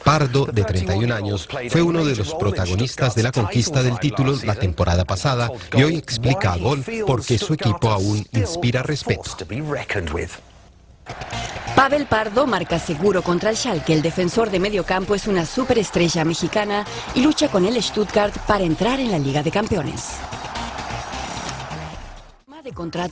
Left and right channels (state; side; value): identical; both; correlation 1.00